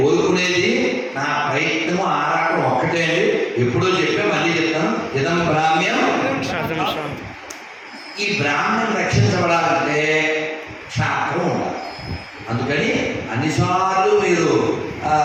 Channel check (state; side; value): identical; both; correlation 1.00